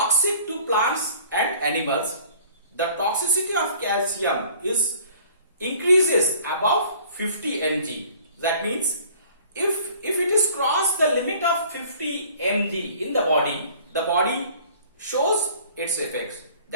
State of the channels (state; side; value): inverted; both; correlation -0.51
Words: to plants and animals. The toxicity of calcium increases above 50 mg. That means if it is crossed the limit of 50 mg in the body shows its effects.